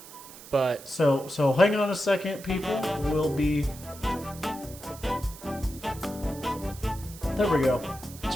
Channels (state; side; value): noise; right; hiss, 17 dB below the sound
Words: but... So hang on a second, people. We'll be... There we go.